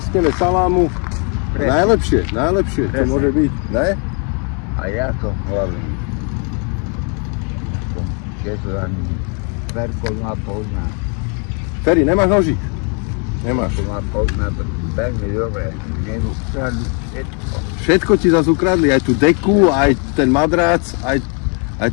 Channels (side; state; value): right; quieter; 37.7 dB